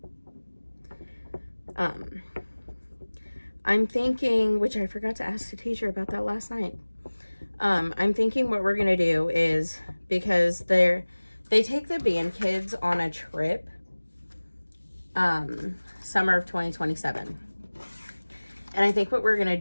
I'm thinking, which I forgot to ask the teacher about that last night. I'm thinking what we're gonna do is, because they take the band kids on a trip summer of 2027, and I think what we're gonna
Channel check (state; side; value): inverted; both; correlation -1.00